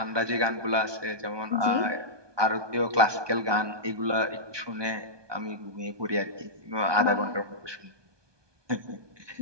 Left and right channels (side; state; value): left; late; 1.2 ms